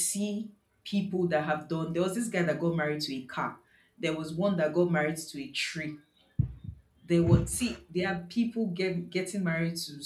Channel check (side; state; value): both; identical; correlation 1.00